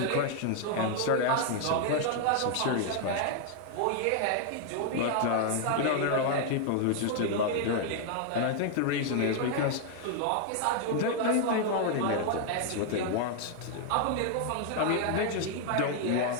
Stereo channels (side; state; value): both; different; correlation 0.00